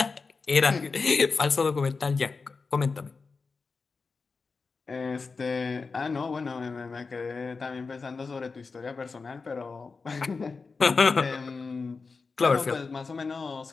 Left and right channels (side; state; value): right; quieter; 4.5 dB